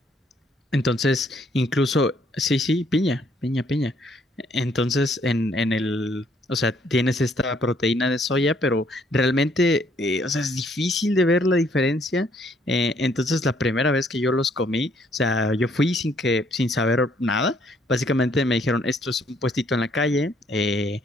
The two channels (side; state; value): both; normal; correlation 0.67